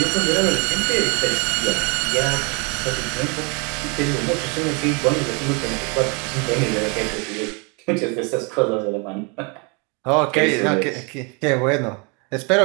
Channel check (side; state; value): left; quieter; 32.5 dB